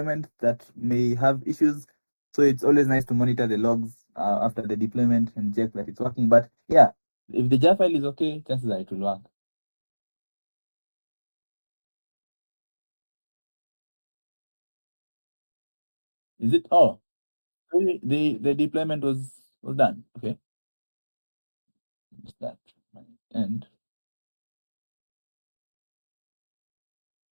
that may have issues. So it's always nice to monitor the logs after the deployment and check that it's working. But yeah, if the jar file is okay, chances are it will work. Is it? Oh, so the deployment was done. Okay, it's that. And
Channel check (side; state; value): both; inverted; correlation -1.00